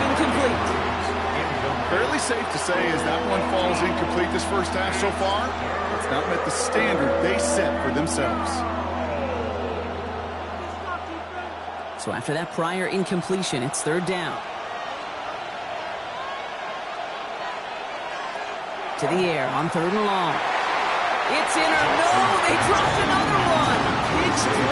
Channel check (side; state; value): both; identical; correlation 1.00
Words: incomplete. Fairly safe to say as that one falls incomplete this first half so far, it's not met the standard they set for themselves. So after that prior incompletion, it's 3rd down. To the air on 3rd and long. It's in or no, they dropped another one. It's